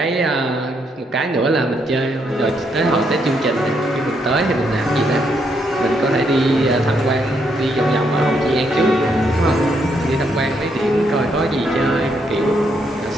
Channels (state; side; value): normal; both; correlation 0.76